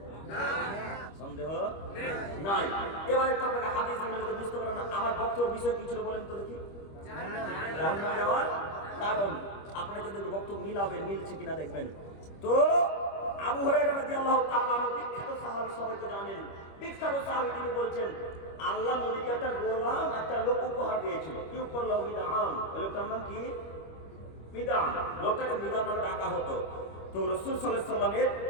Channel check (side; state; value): right; late; 25 ms